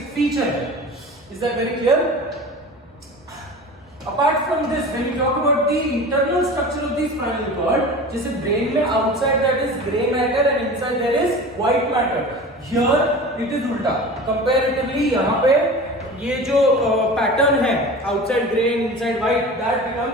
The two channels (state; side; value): normal; both; correlation 0.35